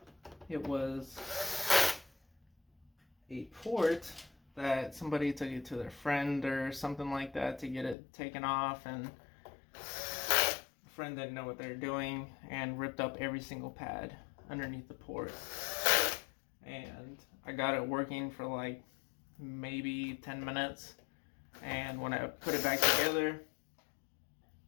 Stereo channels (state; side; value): drops out; right; at 8.0 s